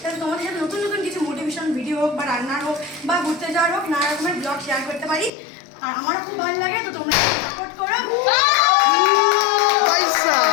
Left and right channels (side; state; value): right; drops out; at 5.3 s